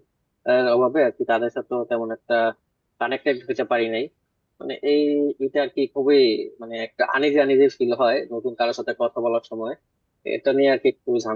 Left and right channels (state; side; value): identical; both; correlation 1.00